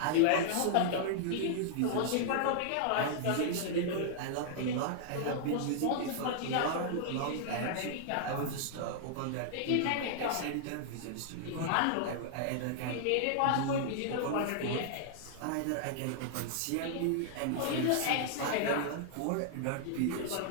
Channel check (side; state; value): both; different; correlation -0.01